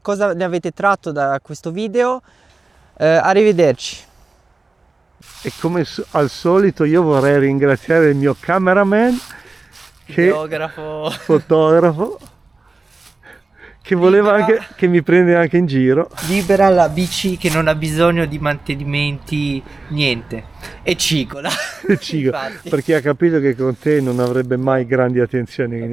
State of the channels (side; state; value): left; quieter; 3.5 dB